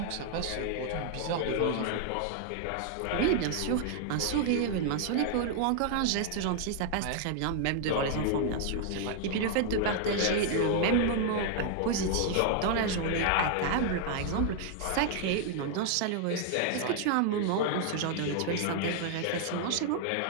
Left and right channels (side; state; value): both; different; correlation 0.00